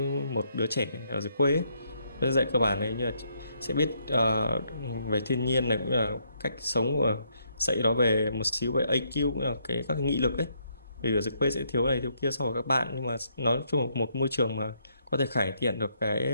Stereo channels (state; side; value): inverted; both; correlation -0.73